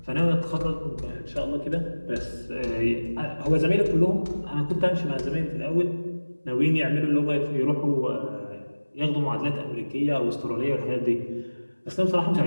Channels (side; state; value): both; inverted; correlation -1.00